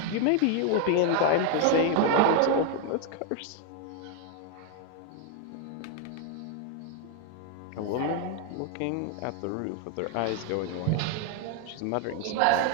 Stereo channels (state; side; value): different; both; correlation 0.00